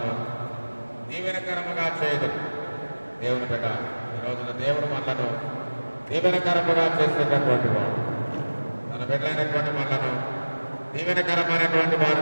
దీవెనకరముగా చేయదు. దేవుని బిడ్డ, ఈ రోజున దేవుడు మనలను దీవెనకరముగా చేసేటటువంటి వాడు. తన బిడ్డలైనటువంటి మనలను దీవెనకరమైనటువంటి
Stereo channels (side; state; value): both; inverted; correlation -1.00